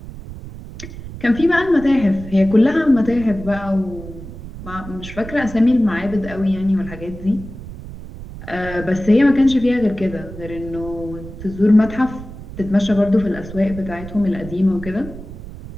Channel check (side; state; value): right; noise; rumble, 13 dB below the sound